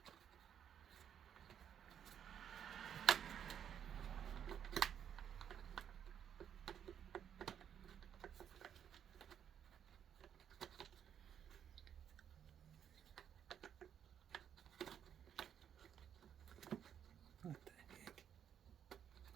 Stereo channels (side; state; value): left; quieter; 8.9 dB